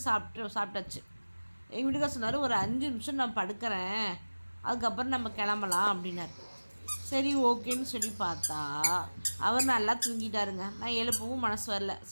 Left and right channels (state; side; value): inverted; both; correlation -1.00